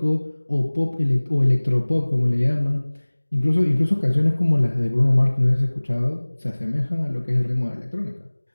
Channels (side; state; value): both; inverted; correlation -1.00